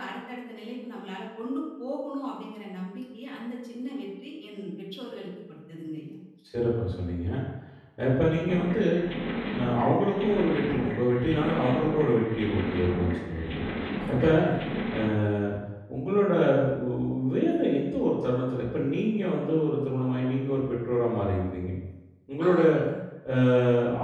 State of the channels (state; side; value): identical; both; correlation 1.00